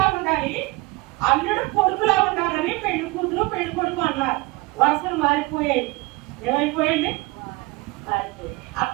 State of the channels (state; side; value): quieter; left; 23.1 dB